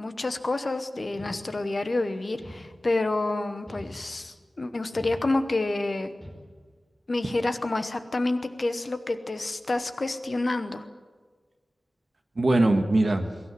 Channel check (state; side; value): normal; both; correlation 0.96